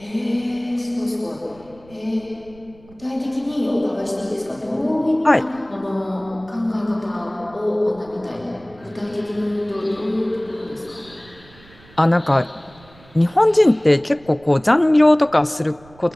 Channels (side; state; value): right; noise; rumble, 25 dB below the sound